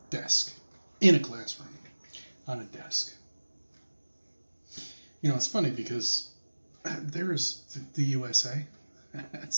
desk, in a classroom, on a desk. You know, it's funny because there's the USA.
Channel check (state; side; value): inverted; both; correlation -1.00